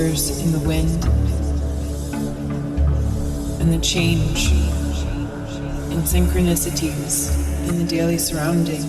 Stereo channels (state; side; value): identical; both; correlation 1.00